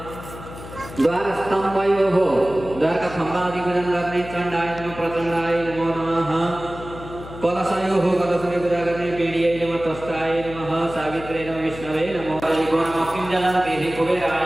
द्वार स्तंभयो हो द्वार का खंभा आदि पूजन करने चंडाय नमः प्रचंडाय नमो नमः कलशयो हो कलश में पूजा करने पीड़िये नमः तस्ताय नमः सावित्रे नमः विष्णवे नमो हरिको नमः किंजलं देहि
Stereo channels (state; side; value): noise; left; hum, 13 dB below the sound